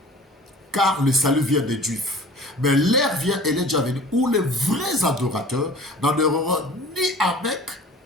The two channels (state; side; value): normal; both; correlation 0.44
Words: Car le salut vient des Juifs. Mais l'heure vient, elle est déjà venue, où les vrais adorateurs n'adoreront ni à Mecque,